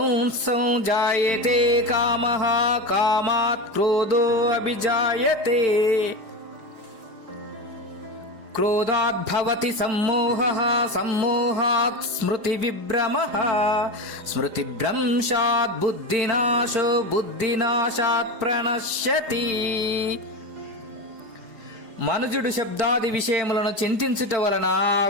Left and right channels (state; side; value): late; left; 4.8 ms